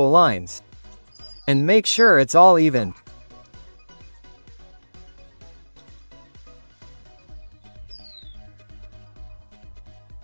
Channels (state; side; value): inverted; both; correlation -1.00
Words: lines. And make sure it's all even.